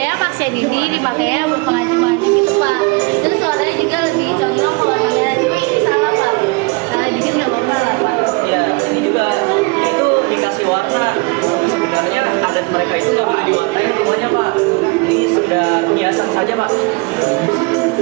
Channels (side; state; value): left; quieter; 28.1 dB